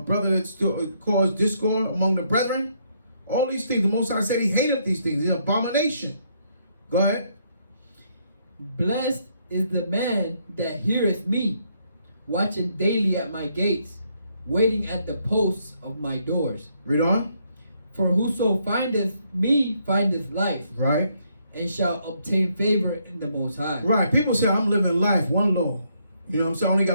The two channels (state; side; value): inverted; both; correlation -0.72